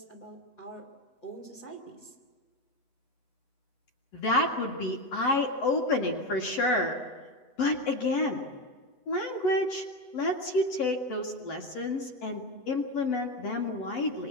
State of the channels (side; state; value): right; late; 8.0 ms